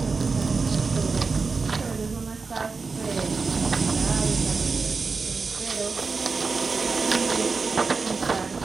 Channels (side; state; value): left; quieter; 4.5 dB